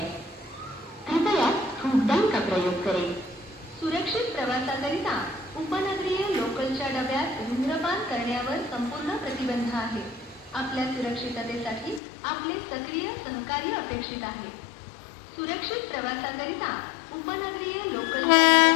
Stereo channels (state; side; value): drops out; right; at 12.0 s